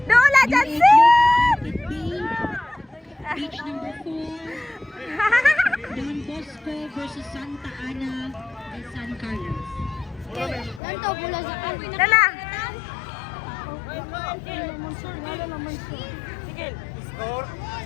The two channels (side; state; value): right; drops out; at 10.8 s